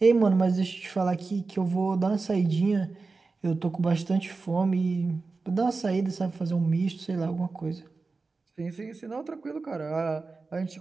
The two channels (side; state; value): left; quieter; 4.0 dB